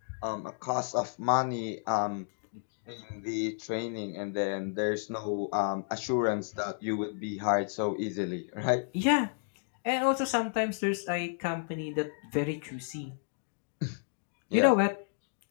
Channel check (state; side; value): silent; right; digital silence